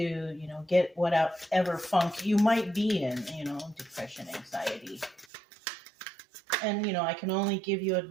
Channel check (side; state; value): left; drops out; at 5.2 s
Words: know, get whatever funk you might be in, you know, depression, anxiety. And, you know, I can only give you